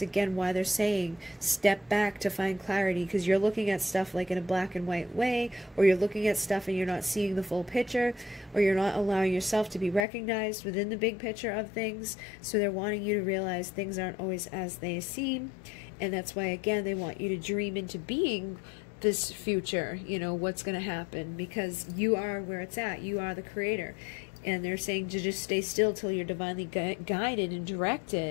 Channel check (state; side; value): drops out; right; at 10.1 s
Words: again why they're saying step back to find clarity, because you're looking at stuff like in a black and white way, or you're looking at stuff and you're not seeing the full picture, or you're not allowing yourself to be recognized within the big picture of things. So they're wanting you to realize things aren't always as they seem, and that's why again they want you to dream into being this future, you know, what's going to happen, because you are where it's at. You are the creator. And they're saying to just stay still till you're divinely guided and